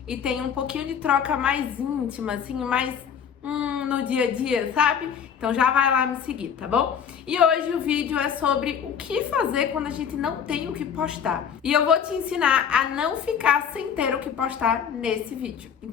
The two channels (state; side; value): quieter; right; 7.7 dB